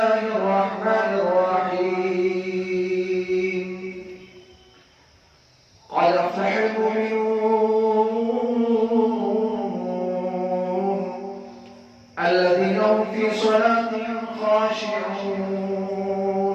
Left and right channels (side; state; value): both; identical; correlation 1.00